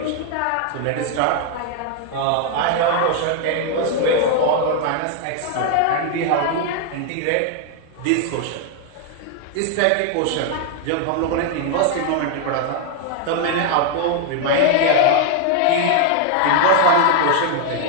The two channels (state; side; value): different; both; correlation 0.00